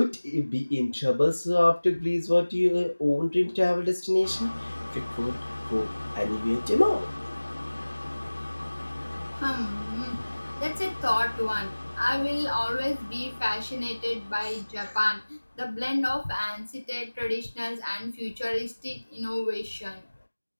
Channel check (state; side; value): inverted; both; correlation -1.00